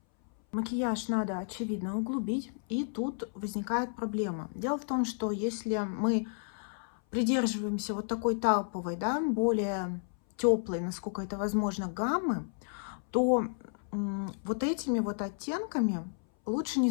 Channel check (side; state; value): right; silent; 56 dB below the other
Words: Макияж надо, очевидно, углубить. И тут возникает проблема. Дело в том, что если мы придерживаемся вот такой тауповой, да, более теплой, насколько это возможно, гаммы, то вот этими вот оттенками лучше не